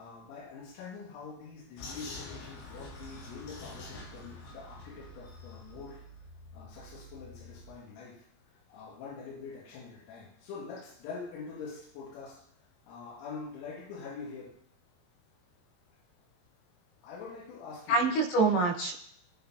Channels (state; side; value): late; right; 22 ms